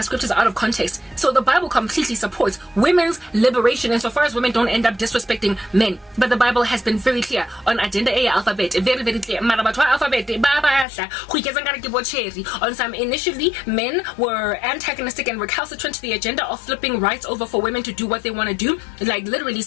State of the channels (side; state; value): right; drops out; at 10.9 s